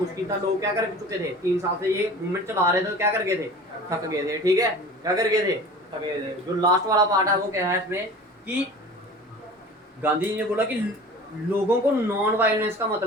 था, लोग क्या कर चुके थे, 3 साल से ये मूवमेंट चला रहे थे, तो क्या कर गए थे, थक गए थे। ठीक है, क्या कर गए थे, थक गए थे। जो लास्ट वाला पार्ट है वो क्या है इसमें कि गांधी जी ने बोला कि लोगों को नॉन वायलेंस का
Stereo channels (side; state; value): both; normal; correlation 0.40